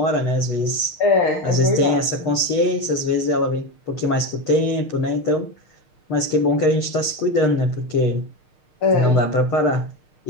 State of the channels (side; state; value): right; late; 6.5 ms